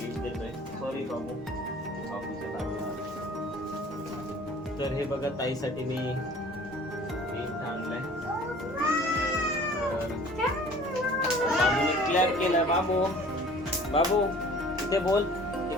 देतोय. सॉरी बाबू, बाबूच्या बाजूला. तर हे बघा ताईसाठी मी गिफ्ट आणलंय. बाबूने क्लॅप केलं. बाबू बाबू इथे बोल,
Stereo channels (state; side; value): normal; both; correlation 0.48